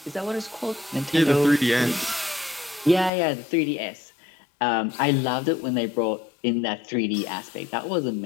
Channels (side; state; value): right; drops out; at 3.1 s